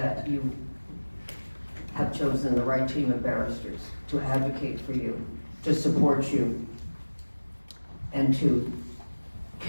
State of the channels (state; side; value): inverted; both; correlation -1.00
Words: you have chosen the right team of barristers to advocate for you, to support you, and to